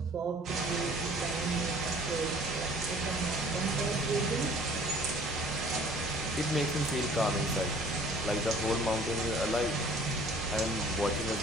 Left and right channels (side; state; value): both; normal; correlation 0.52